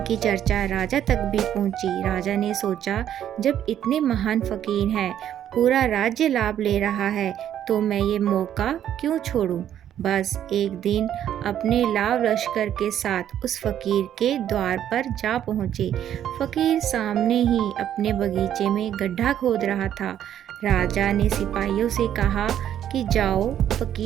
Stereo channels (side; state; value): left; quieter; 10.5 dB